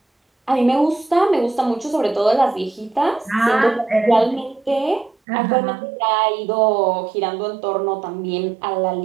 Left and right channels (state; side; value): drops out; left; at 5.2 s